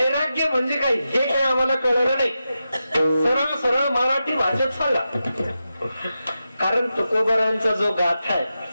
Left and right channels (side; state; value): both; inverted; correlation -0.90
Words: म्हणजे काय हे काही आम्हाला कळलं नाही. सरळ सरळ मराठी भाषेत सांगा. कारण तुकोबारायांचा जो गाथा आहे